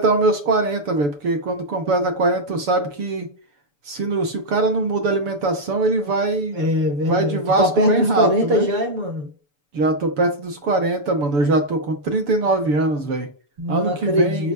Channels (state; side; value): late; left; 6.9 ms